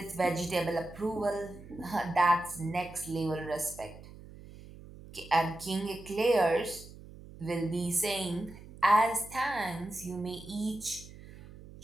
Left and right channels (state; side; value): noise; right; hum, 17 dB below the sound